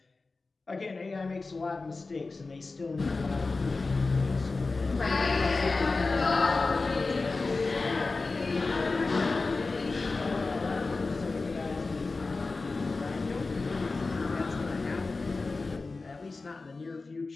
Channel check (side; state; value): right; quieter; 3.7 dB